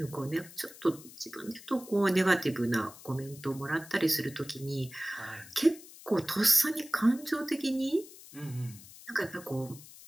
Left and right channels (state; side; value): noise; left; hiss, 18 dB below the sound